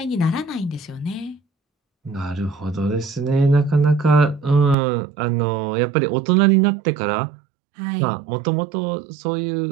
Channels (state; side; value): drops out; left; at 4.8 s